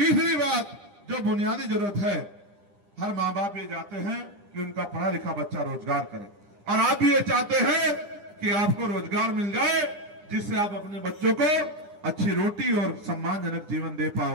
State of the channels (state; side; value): late; left; 9.9 ms